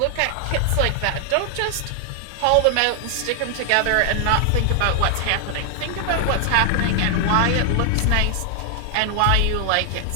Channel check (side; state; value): both; different; correlation 0.00